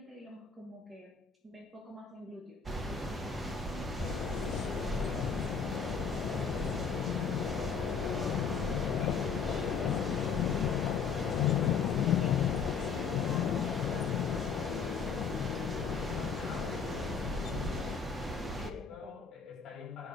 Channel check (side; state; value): right; quieter; 5.6 dB